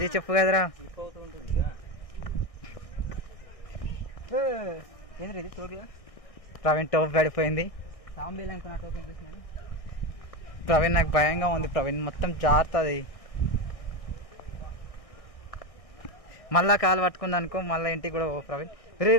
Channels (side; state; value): right; late; 1.6 ms